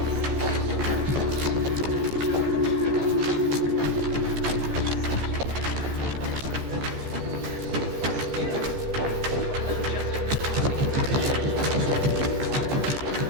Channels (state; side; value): late; left; 15 ms